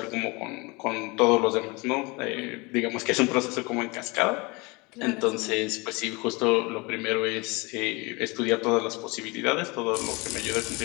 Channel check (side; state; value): right; quieter; 26.4 dB